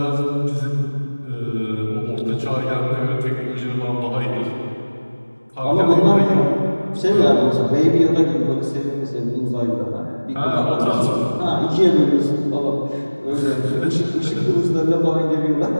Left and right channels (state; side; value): inverted; both; correlation -1.00